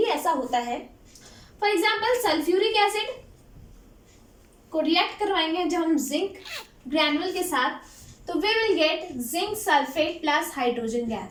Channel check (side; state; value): both; identical; correlation 1.00